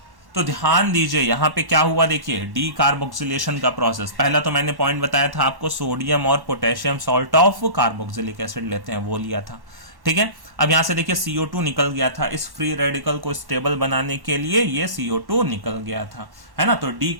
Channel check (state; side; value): late; left; 1.1 ms